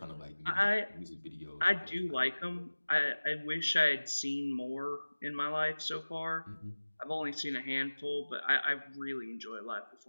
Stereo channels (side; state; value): both; inverted; correlation -1.00